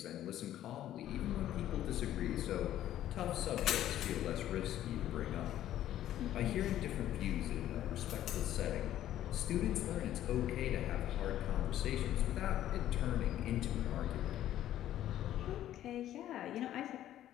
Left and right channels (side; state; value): right; quieter; 12.4 dB